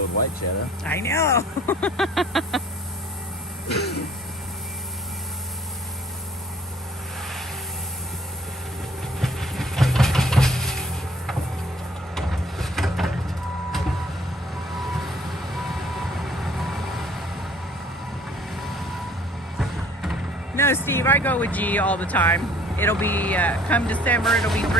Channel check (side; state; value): both; normal; correlation 0.56